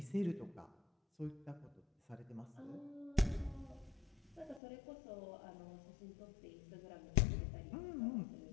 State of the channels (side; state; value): right; drops out; at 4.6 s